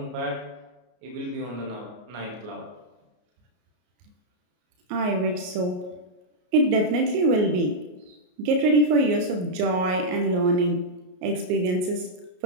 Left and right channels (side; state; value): left; late; 33 ms